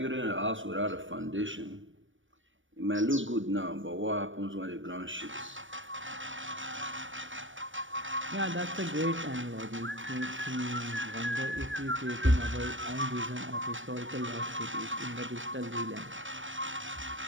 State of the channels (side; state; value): left; late; 0.56 ms